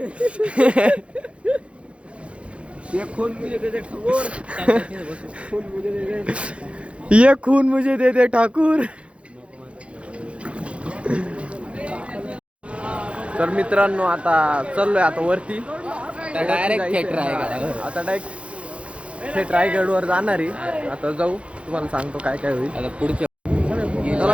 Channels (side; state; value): left; late; 0.060 ms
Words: ये खून मुझे दे दे ठाकूर तर मित्रांनो आता चाललोय आता वरती डायरेक्ट आता डायरेक्ट थेट रायगडवर जाणार आहे आता जाऊ तुम्हाला सांगतो काय काय होईल आता पुढच्या